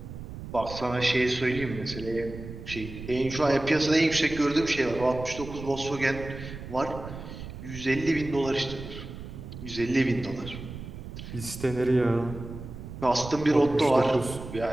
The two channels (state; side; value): noise; right; rumble, 11 dB below the sound